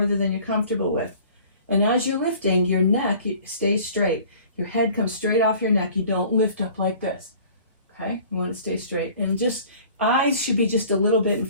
than you're comfortable with. And as you're lifting, your neck stays straight. Your head comes straight off your neck. You don't lift up like this. Okay? You want to stay straight. And just eyes should be just a little bit in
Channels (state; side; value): inverted; both; correlation -0.48